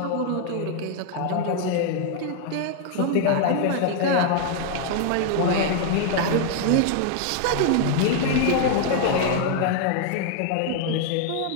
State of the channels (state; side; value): different; both; correlation 0.00